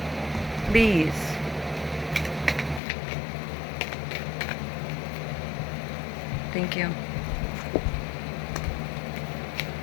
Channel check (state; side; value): drops out; right; at 2.8 s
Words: Please. Thank you.